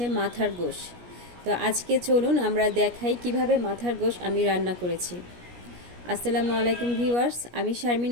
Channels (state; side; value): late; left; 17 ms